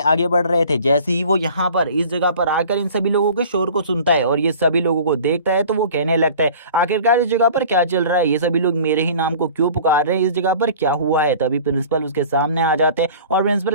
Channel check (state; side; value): inverted; both; correlation -0.45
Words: आगे बढ़ रहे थे। जैसे ही वो यहाँ पर इस जगह पर आकर इन सभी लोगों के शोर को सुनता है और ये सभी लोगों को देखता है तो वो कहने लगता है, आखिरकार इस जगह पर क्या चल रहा है, ये सभी लोग मेरे ही नाम को क्यों पुकार रहे हैं, इस जगह पर क्या हुआ है। तभी प्रिंसिपल उसके सामने आ जाते हैं और प्रिंसिपल